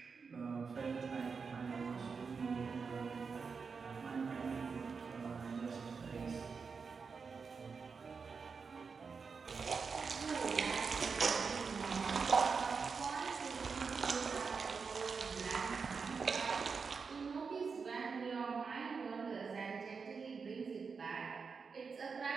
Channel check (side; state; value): left; quieter; 5.3 dB